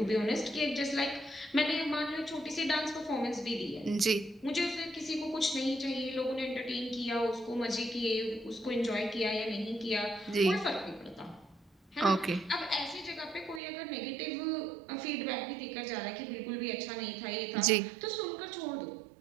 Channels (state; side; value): drops out; left; at 13.6 s